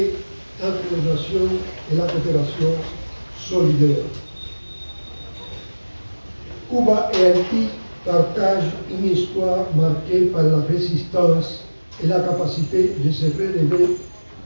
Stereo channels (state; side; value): inverted; both; correlation -1.00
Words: entre les nations et la coopération solidaire. Cuba et Haïti partagent une histoire marquée par la résistance et la capacité de se relever